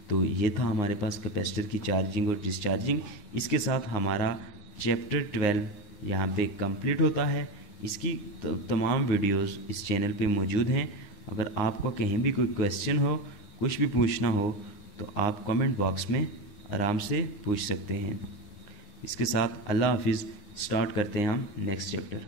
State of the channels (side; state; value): right; late; 9.7 ms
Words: तो ये था हमारे पास कैपेसिटर की चार्जिंग और डिस्चार्जिंग। इसके साथ हमारा चैप्टर 12 यहाँ पे कंप्लीट होता है। इसकी तमाम वीडियोस इस चैनल पे मौजूद हैं। अगर आपको कहीं भी कोई क्वेश्चन हो, कुछ भी पूछना हो तो आप कमेंट बॉक्स में आराम से पूछ सकते हैं। इसके साथ अल्लाह हाफिज़। स्टार्ट करते हैं हम नेक्स्ट चैप्टर।